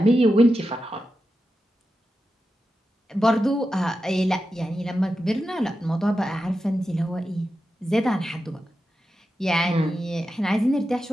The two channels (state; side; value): normal; both; correlation 0.90